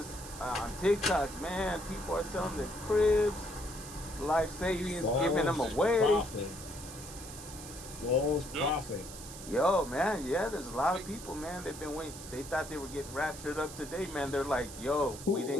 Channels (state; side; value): noise; right; hiss, 13 dB below the sound